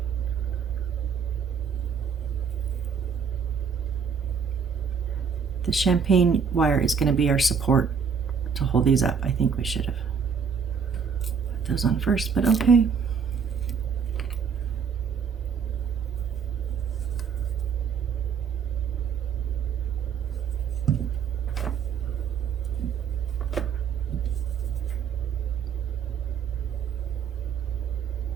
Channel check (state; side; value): quieter; left; 6.5 dB